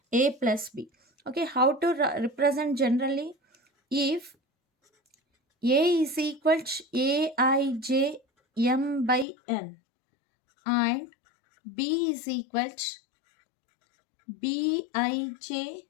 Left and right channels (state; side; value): drops out; right; at 9.2 s